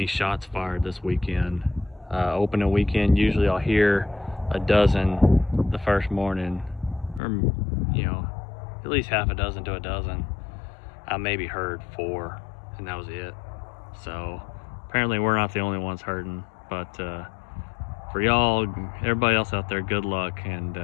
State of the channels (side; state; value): right; drops out; at 7.2 s